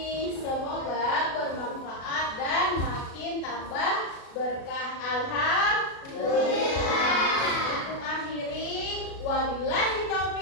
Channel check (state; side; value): late; right; 36 ms